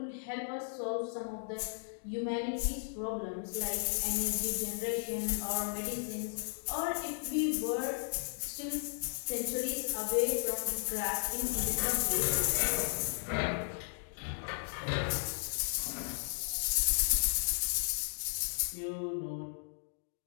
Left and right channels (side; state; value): right; silent; digital silence